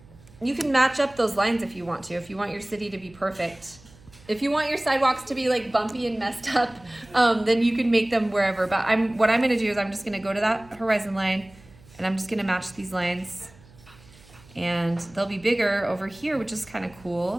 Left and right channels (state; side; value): noise; right; hum, 24 dB below the sound